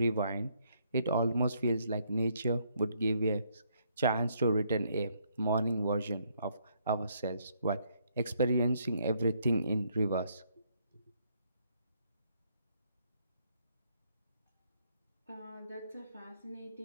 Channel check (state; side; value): inverted; both; correlation -0.71